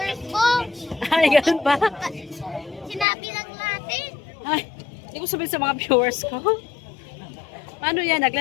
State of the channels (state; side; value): drops out; right; at 3.1 s